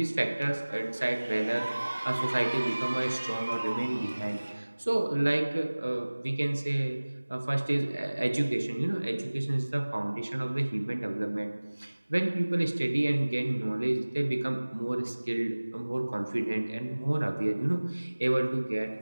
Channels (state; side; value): inverted; both; correlation -1.00